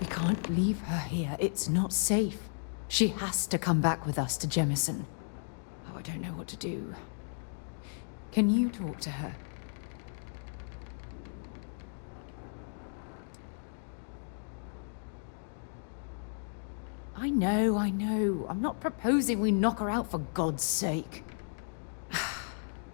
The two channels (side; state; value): right; silent; digital silence